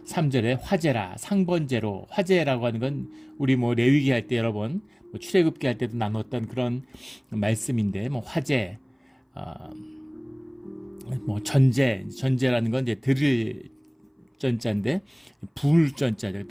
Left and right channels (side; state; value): both; identical; correlation 1.00